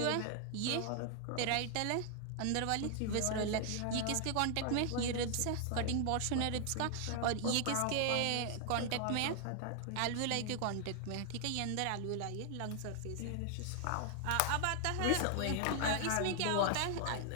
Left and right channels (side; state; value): both; different; correlation 0.00